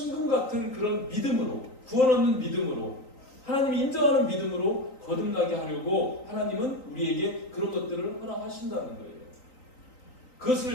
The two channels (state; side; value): late; right; 3.9 ms